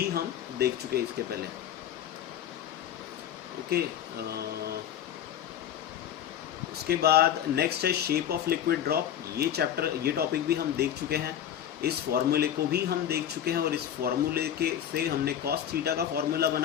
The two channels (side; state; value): right; quieter; 10.1 dB